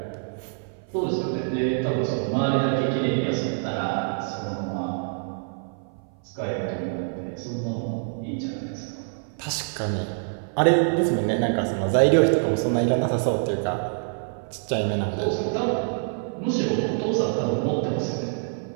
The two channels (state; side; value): silent; left; 57 dB below the other